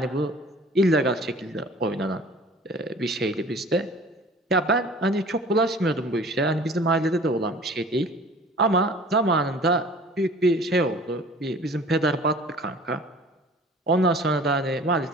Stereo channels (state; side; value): normal; both; correlation 0.47